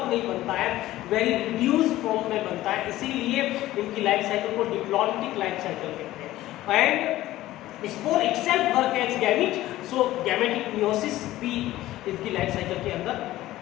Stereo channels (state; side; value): quieter; right; 15.6 dB